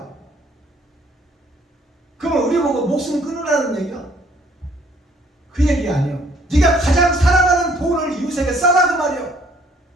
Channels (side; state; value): both; normal; correlation 0.62